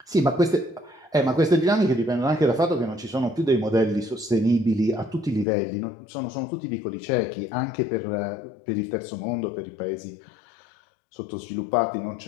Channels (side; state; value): right; drops out; at 5.5 s